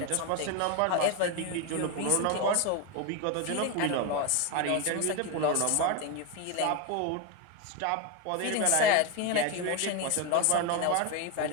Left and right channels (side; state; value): both; different; correlation 0.02